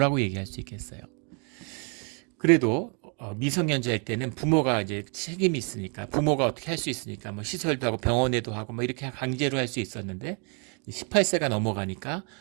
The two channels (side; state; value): left; quieter; 37.2 dB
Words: 얘기할 수 있겠어요? 그래도 미성년자일 때는 부모가 이제 책임이 있으니까 부모가 어떻게 할 수 있으니까 뭐 시설도 하고 병원에도 하고 뭐 이렇게 강제로 할 수 있었는데 18세가 넘어가니까